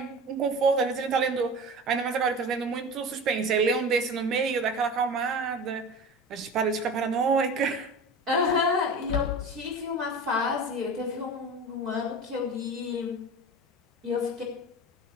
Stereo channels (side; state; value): both; normal; correlation 0.33